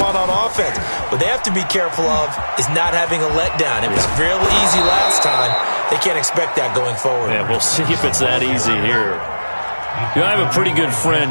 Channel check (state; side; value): inverted; both; correlation -1.00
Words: on offense. What they have to be careful of is not having a letdown. It was real easy last time. They can't expect that going forward. Yeah, we'll see if it's that easy here. You know, I have a pretty good